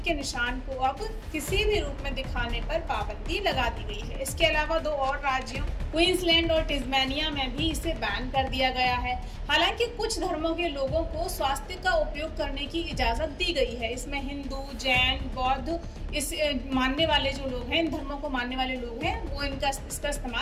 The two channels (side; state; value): both; identical; correlation 1.00